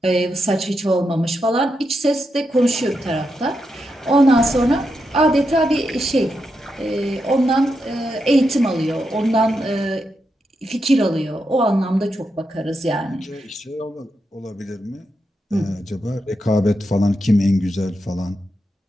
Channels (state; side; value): normal; both; correlation 0.85